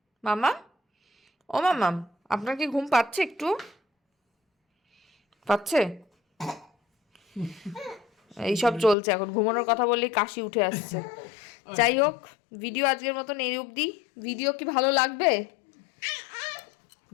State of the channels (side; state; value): right; drops out; at 9.0 s